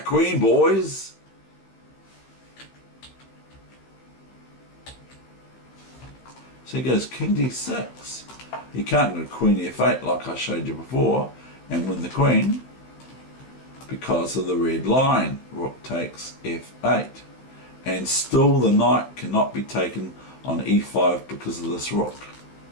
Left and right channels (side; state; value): right; late; 15 ms